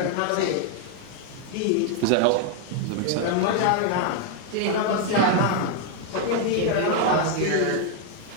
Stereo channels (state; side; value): different; both; correlation 0.00